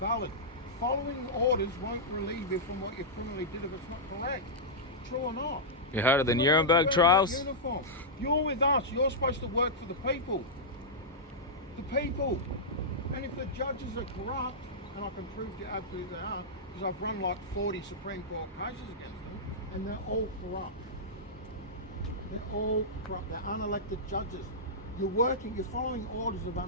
valid. Following orders won't relieve you from what you criminally did if it's not correct. True or not? You heard of the You're Nuremberg wearing trials? that uniform. You're with us. You're supposed to work for the people. The people. And if the judges are corrupt, and I can prove to you absolutely they are, because I've run like 40 Supreme Court cases against them, and they're all corrupt. They're all corrupt. They're unelected judges. You're following orders of an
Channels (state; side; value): normal; both; correlation -0.11